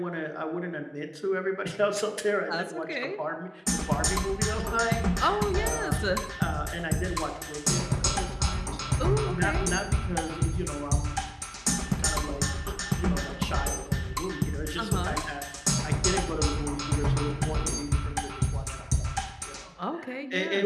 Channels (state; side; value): identical; both; correlation 1.00